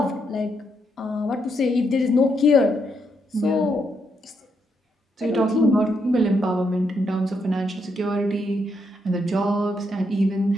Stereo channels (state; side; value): normal; both; correlation 0.78